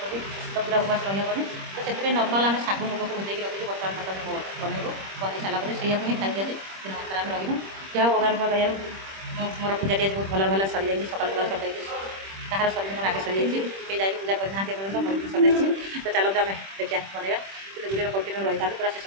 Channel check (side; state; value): left; late; 26 ms